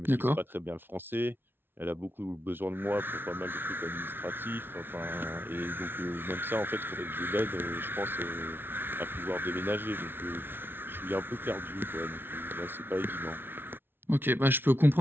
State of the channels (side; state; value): left; late; 0.10 ms